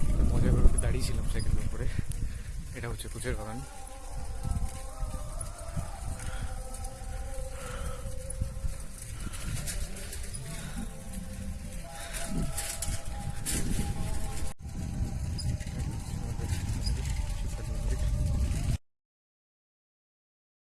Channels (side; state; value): both; identical; correlation 1.00